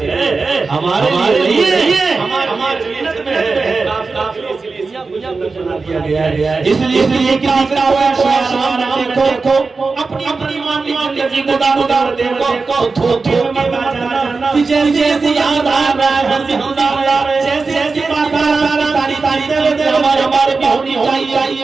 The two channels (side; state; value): left; quieter; 4.2 dB